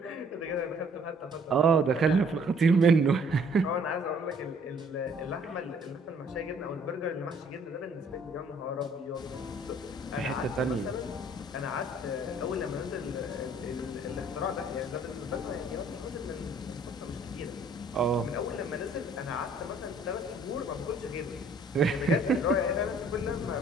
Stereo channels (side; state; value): both; normal; correlation 0.59